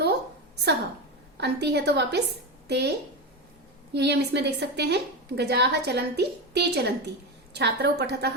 सह, अंति है तो वापस ते। यही हम इसमें देख सकते हैं। गजाः चलन्ति ते चलन्ति, छात्रौ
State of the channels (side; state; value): both; normal; correlation 0.16